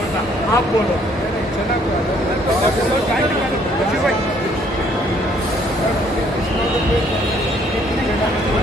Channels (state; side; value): normal; both; correlation 0.64